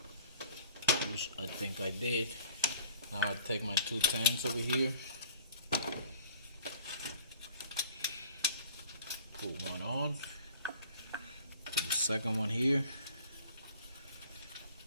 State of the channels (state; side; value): inverted; both; correlation -0.51